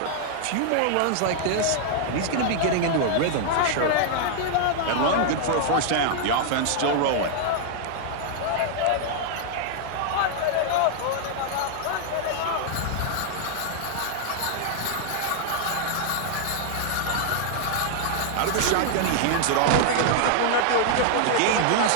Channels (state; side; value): different; both; correlation -0.01